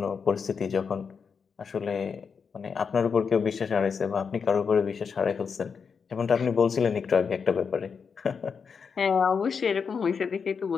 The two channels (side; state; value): right; quieter; 5.9 dB